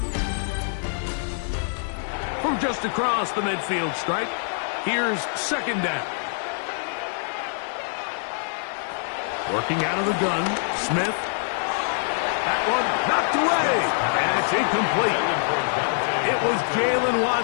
From just across the midfield stripe, here's second down. Working out of the gun, Smith. That one knocked away, and it's incomplete. It was Jalen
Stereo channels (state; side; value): silent; right; digital silence